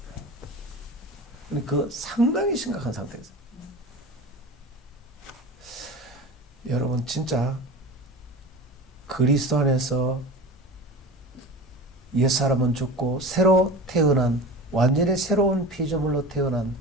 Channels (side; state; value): both; normal; correlation 0.33